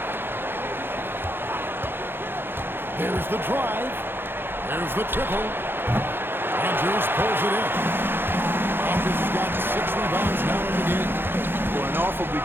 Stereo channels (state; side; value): late; left; 0.10 ms